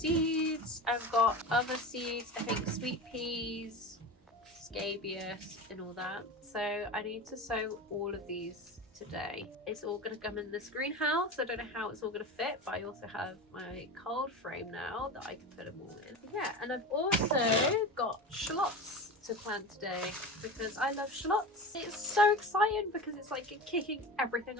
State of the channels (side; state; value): both; normal; correlation 0.28